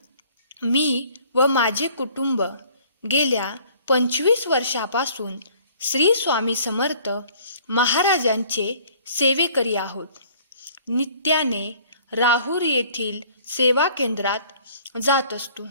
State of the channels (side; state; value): both; inverted; correlation -0.55